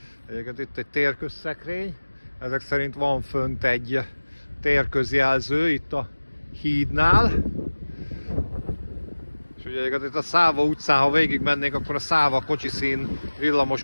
Egyébként itt egy térközszekrény. Ezek szerint van fönt egy térközjelző itt a hídnál. És ugye itt a Száva utcán, ha végig mennénk, akkor a Száva kocsiszín, villamos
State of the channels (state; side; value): inverted; both; correlation -1.00